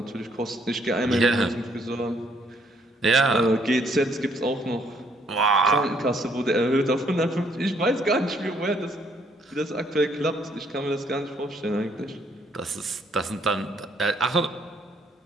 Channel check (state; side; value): normal; both; correlation 0.68